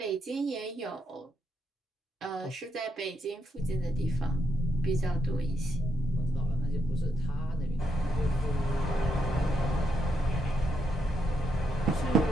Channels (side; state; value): both; normal; correlation 0.79